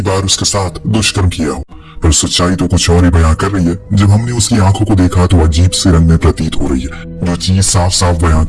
बार उसके साथ दुष्कर्म किया हो, पर सच्चाई तो कुछ और ही बयां कर रही है। जब हमने उसकी आंखों को देखा तो अजीब से रंग में प्रतीत हो रही है। जो चीज साफ साफ बयां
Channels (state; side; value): identical; both; correlation 1.00